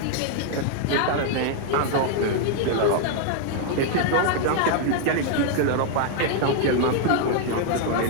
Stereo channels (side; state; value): both; different; correlation 0.00